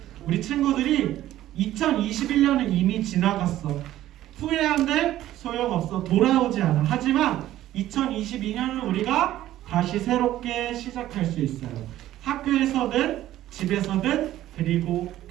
우리 친구들이 2021년은 이미 지나갔어. 후회한데 소용없어. 돌아오지 않아. 하지만 2022년은 우리가 다시 새롭게 시작할 수 있어요. 학교에서든 집에서든 그리고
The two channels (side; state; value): left; quieter; 13.8 dB